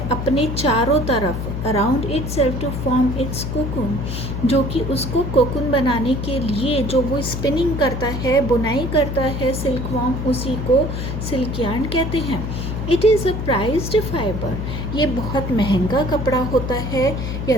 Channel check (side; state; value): left; noise; hum, 4 dB below the sound